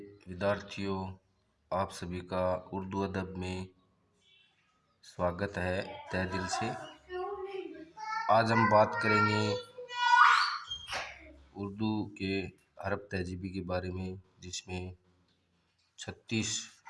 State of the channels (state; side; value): identical; both; correlation 1.00